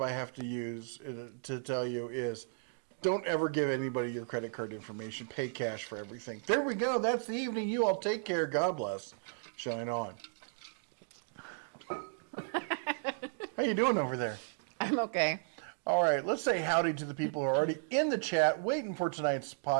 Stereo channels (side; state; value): left; silent; digital silence